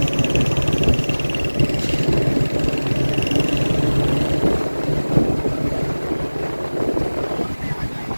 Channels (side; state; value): both; inverted; correlation -1.00